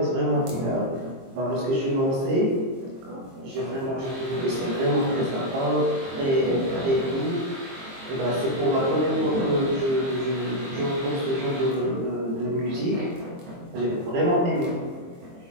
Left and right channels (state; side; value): late; left; 22 ms